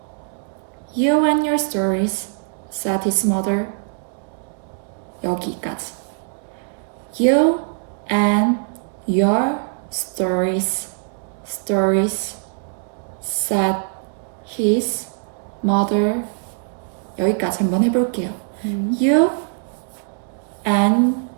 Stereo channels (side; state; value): left; silent; 64 dB below the other